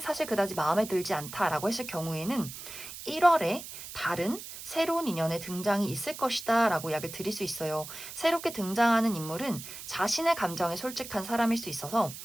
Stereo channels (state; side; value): noise; right; hiss, 11 dB below the sound